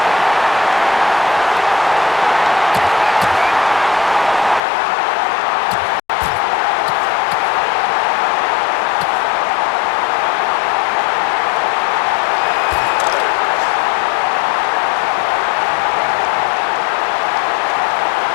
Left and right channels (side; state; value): right; drops out; at 4.6 s